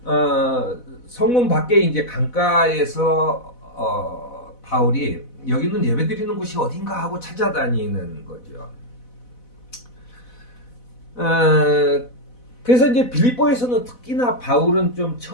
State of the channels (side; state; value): right; late; 4.0 ms